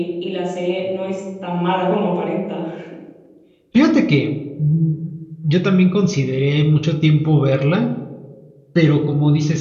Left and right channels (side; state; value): both; identical; correlation 1.00